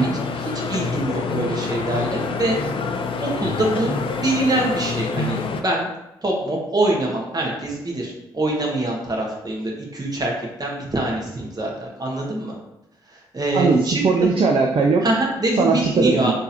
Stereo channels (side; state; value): both; normal; correlation 0.62